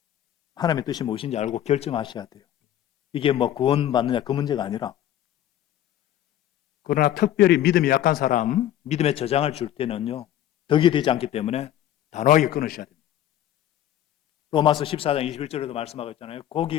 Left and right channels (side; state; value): right; quieter; 11.8 dB